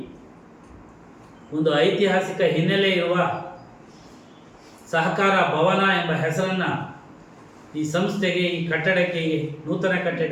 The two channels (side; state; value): both; identical; correlation 1.00